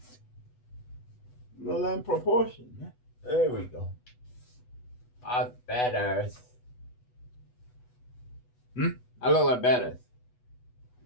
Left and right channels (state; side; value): late; right; 8.1 ms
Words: Well, in proportion, man. There we go. I'm badass. Hmm? I look like badass.